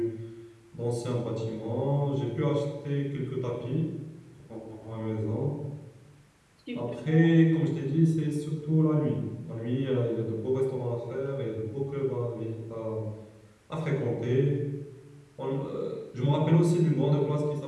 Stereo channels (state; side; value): identical; both; correlation 1.00